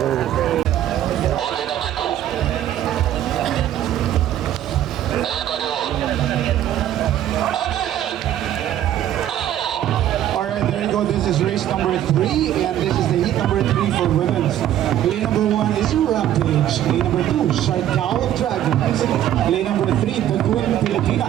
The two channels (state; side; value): quieter; left; 11.7 dB